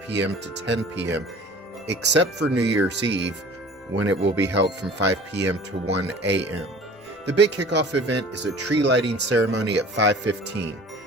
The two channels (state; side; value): normal; both; correlation 0.45